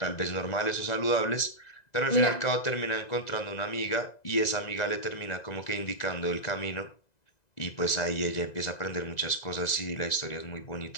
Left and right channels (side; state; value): right; late; 1.9 ms